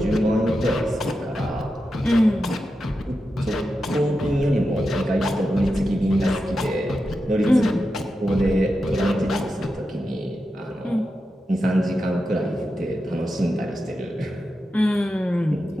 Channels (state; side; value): normal; both; correlation 0.89